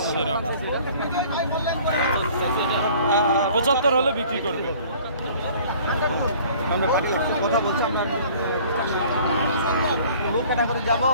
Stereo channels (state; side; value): inverted; both; correlation -0.51